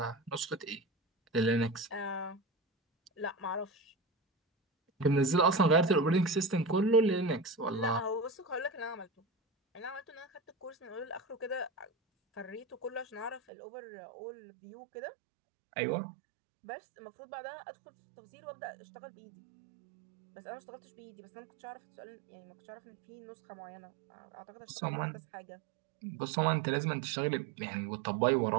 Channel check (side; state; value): left; drops out; at 13.4 s